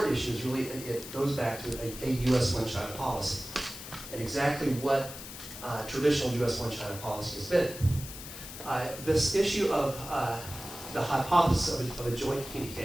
issue is really, it goes back to a U.S. one China policy and exactly what traditional U.S. one China policy has been. This issue of the hypothesis of a joint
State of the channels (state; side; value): noise; left; hiss, 12 dB below the sound